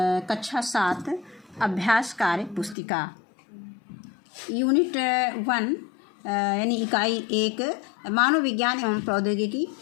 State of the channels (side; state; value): right; drops out; at 2.8 s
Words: कक्षा 7 अभ्यास कार्य पुस्तिका यूनिट 1 यानी इकाई 1 मानव विज्ञान एवं प्रौद्योगिकी।